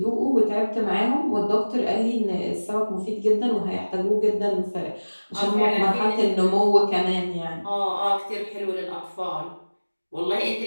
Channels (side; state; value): both; inverted; correlation -1.00